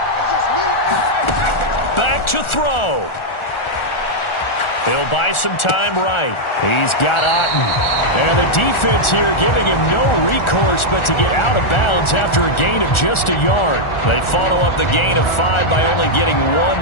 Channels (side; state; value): right; late; 1.4 ms